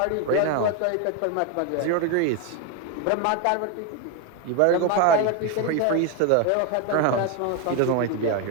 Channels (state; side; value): different; both; correlation 0.02